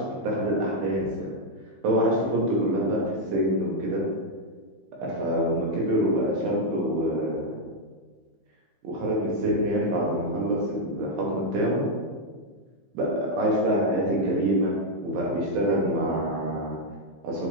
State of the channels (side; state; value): left; late; 15 ms